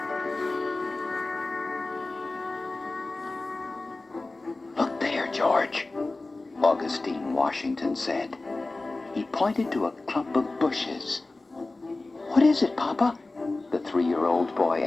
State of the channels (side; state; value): right; quieter; 3.2 dB